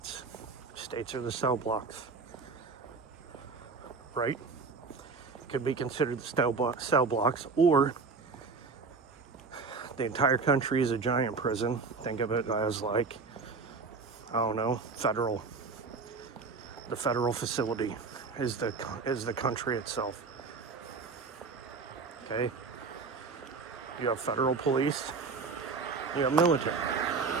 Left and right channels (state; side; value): quieter; left; 4.6 dB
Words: States are the cell blocks. Right? Could be considered the cell blocks, or the entire country is a giant prison. Think of it as like, I don't know, federal. The federal facility is the country itself. Okay? You have federal police. You have military.